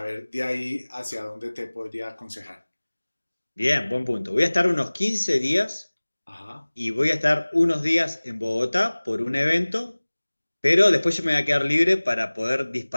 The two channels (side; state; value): both; inverted; correlation -1.00